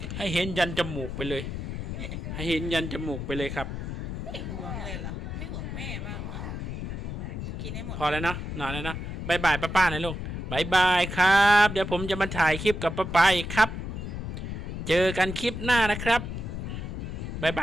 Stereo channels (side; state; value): left; noise; rumble, 5 dB below the sound